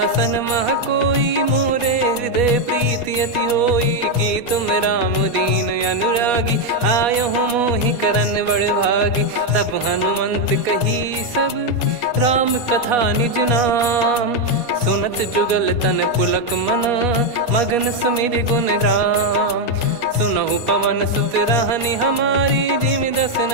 मह कोई मोरे हृदय प्रीति अति होई कि तुम राम दीन अनुरागी आयहु मोहि करन बड़ भागी तब हनुमंत कही सब राम कथा निज नाम सुनत जुगल तन पुलक मन मगन सुमिर गुण राम सुनहु पवन सुत रहनी हमारी जिमि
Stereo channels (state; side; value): late; left; 4.2 ms